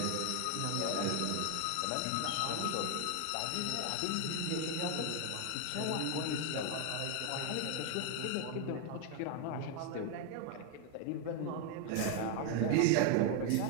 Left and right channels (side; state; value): both; different; correlation 0.01